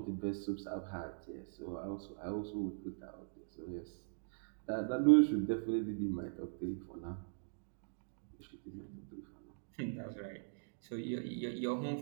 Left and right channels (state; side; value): silent; left; digital silence